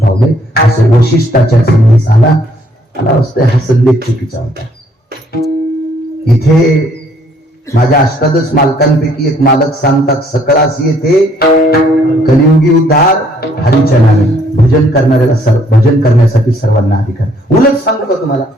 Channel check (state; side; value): normal; both; correlation 0.64